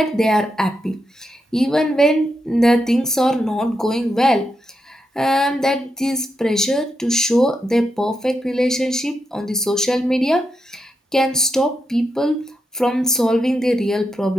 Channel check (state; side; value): normal; both; correlation 0.84